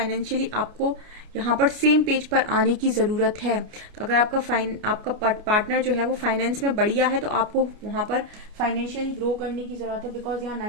आपको यहाँ पर सेम पेज पर आने की जरूरत है। तो अगर आपका पार्टनर जो है वो फाइनेंस में बढ़िया है तो आपको वहां पर फाइनेंशियली ग्रो करने की जरूरत है, बिकॉज यहाँ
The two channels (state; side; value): late; left; 29 ms